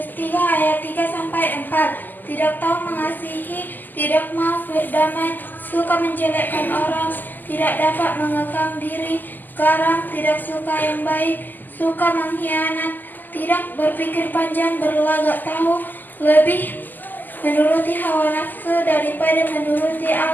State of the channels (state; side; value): late; right; 0.087 ms